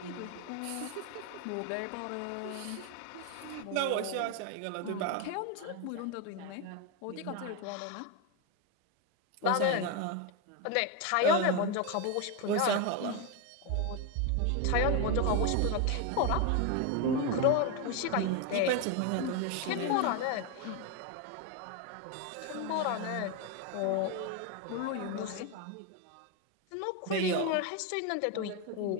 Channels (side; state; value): both; different; correlation 0.02